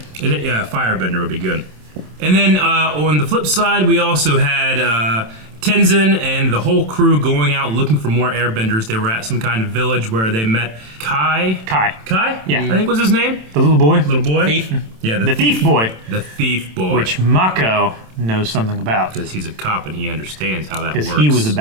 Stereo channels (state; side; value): late; left; 27 ms